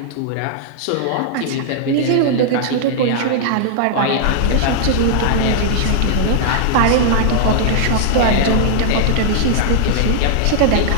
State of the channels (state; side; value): different; both; correlation -0.01